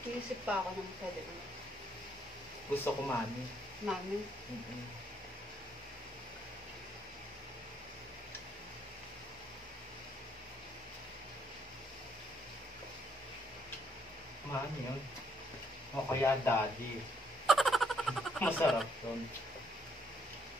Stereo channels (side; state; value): both; normal; correlation 0.70